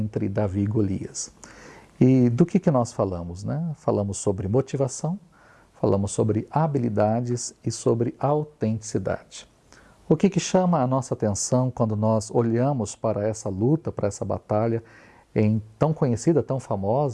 Davi e Golias. E do que nós falamos, né? Falamos sobre motivação, falamos sobre habilidades e sobre autenticidade. O que chama a nossa atenção quando nós olhamos para essa luta, para essa batalha tão conhecida, tão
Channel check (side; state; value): both; identical; correlation 1.00